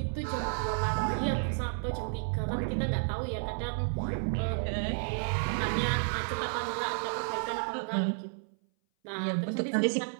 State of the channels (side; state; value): left; silent; 57 dB below the other